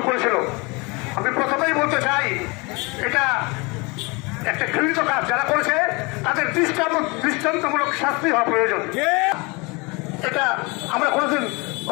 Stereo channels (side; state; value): right; quieter; 27.4 dB